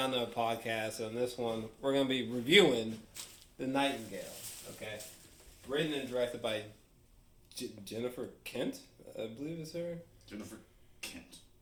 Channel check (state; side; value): identical; both; correlation 1.00